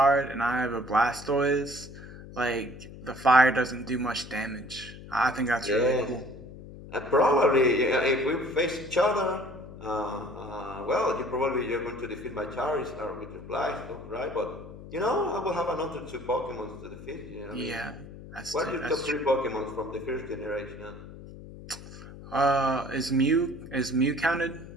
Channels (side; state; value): left; noise; hum, 15 dB below the sound